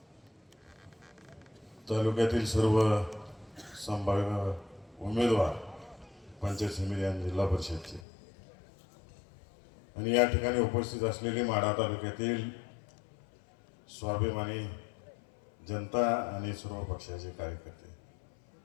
तालुक्यातील सर्व संभाव्य उमेदवार, पंचायत समिती आणि जिल्हा परिषदचे, आणि या ठिकाणी उपस्थित असलेले माढा तालुक्यातील स्वाभिमानी जनता आणि सर्व पक्षाचे कार्यकर्ते.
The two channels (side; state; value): right; drops out; at 8.1 s